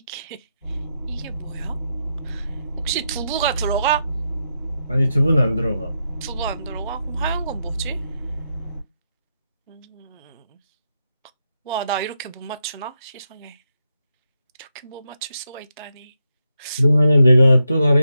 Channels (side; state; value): both; inverted; correlation -0.84